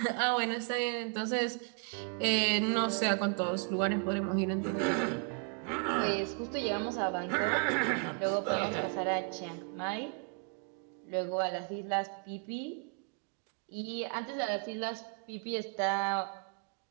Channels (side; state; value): left; quieter; 38.8 dB